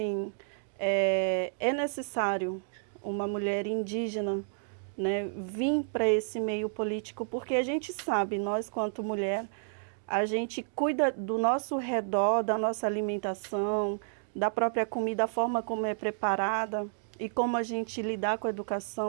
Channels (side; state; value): left; silent; digital silence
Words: é necessário uma mulher indígena, né, vir para esse meio político, porque a gente sabe, nós, quanto mulher, a gente cuida do nosso redor, da nossa alimentação, da própria comida, a forma como é preparada e como a gente lidar com a